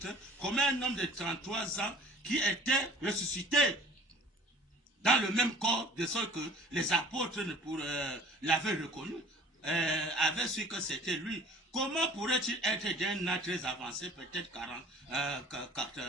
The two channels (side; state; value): both; normal; correlation 0.49